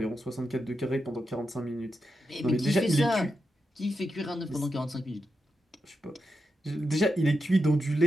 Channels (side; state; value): both; normal; correlation 0.87